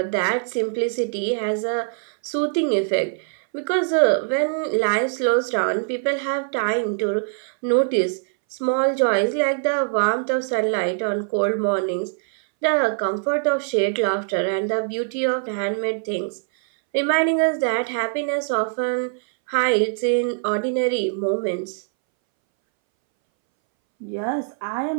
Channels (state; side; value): silent; left; 63 dB below the other